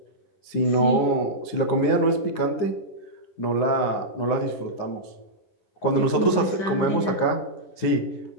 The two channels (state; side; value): late; right; 9.7 ms